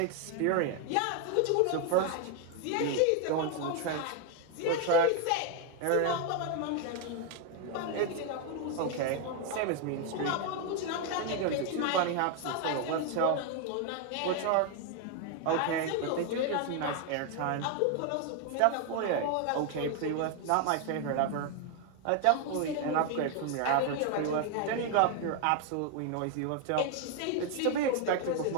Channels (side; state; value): both; different; correlation 0.01